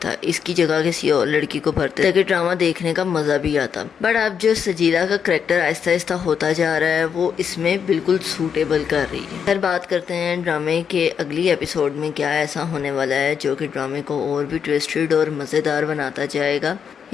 इसकी जगह किसी और लड़की को भरते ताकि ड्रामा देखने का मजा भी आता। बट अब जो सजीला का करैक्टर आहिस्ता आहिस्ता होता जा रहा है वो इसमें बिल्कुल सूटेबल कर रही है। फिर बात करते हैं ड्रामे के अगली एपिसोड में क्या ऐसा होने वाला है जो कि ड्रामे को और भी ट्विस्टेड और मज़ेदार बनाता जाएगा।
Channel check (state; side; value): quieter; right; 7.3 dB